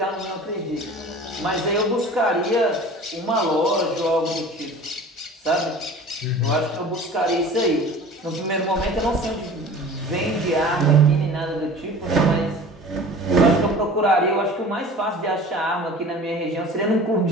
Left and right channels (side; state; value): both; normal; correlation 0.41